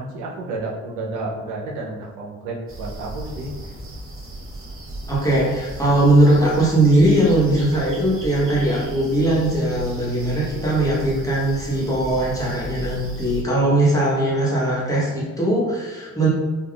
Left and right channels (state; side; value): normal; both; correlation 0.55